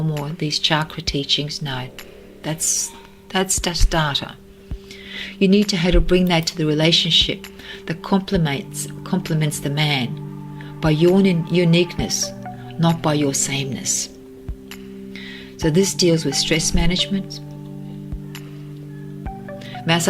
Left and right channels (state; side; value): identical; both; correlation 1.00